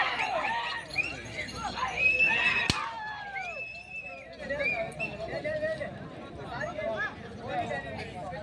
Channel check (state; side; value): identical; both; correlation 1.00